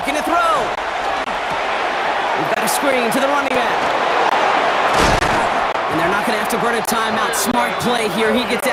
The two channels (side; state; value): both; identical; correlation 1.00